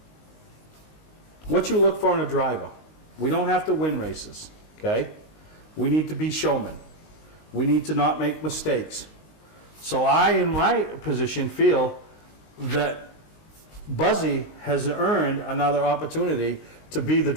what you look for in a driver. We don't have to win races, okay? We need to be showmen. We need to not make mistakes. So I, in my position, feel that Buzzy has earned another opportunity to be the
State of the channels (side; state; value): right; late; 19 ms